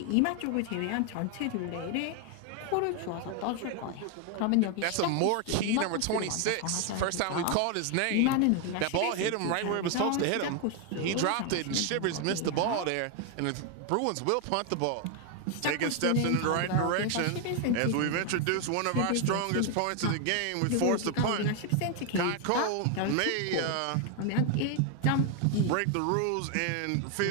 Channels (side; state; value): both; different; correlation 0.01